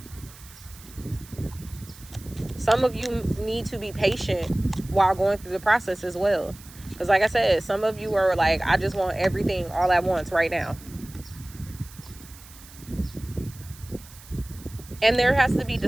Some of you need to be patient while going through the process as well. Because like I said, some of you are like, I just want everything all at once right now. And there has to be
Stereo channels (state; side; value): noise; right; hiss, 20 dB below the sound